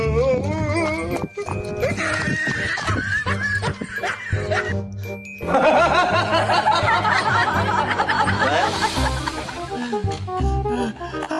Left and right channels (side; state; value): both; identical; correlation 1.00